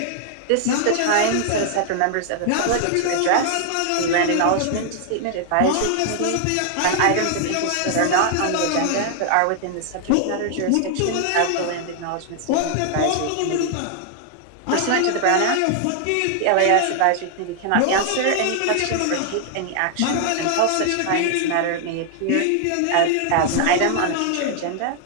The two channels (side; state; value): both; different; correlation 0.00